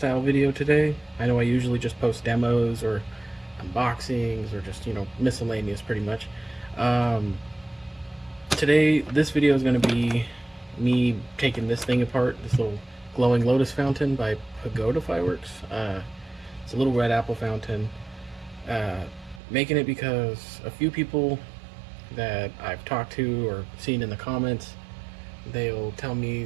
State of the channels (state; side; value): drops out; left; at 19.4 s